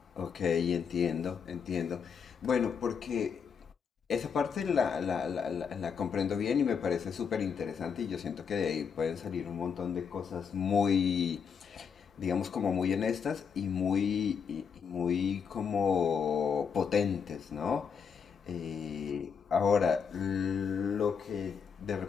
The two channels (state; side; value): quieter; right; 6.5 dB